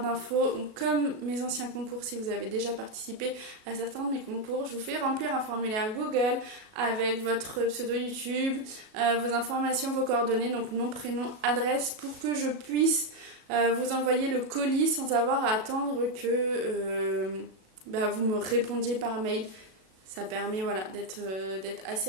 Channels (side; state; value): left; late; 37 ms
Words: Comme mes anciens concours, si vous avez déjà participé à certains de mes concours, je vous fais remplir un formulaire Google avec votre pseudo YouTube, vos informations, vos coordonnées, donc nom, prénom, adresse, pour que je puisse vous envoyer le colis sans avoir à attendre que vous me répondiez par mail. Ça permet d'être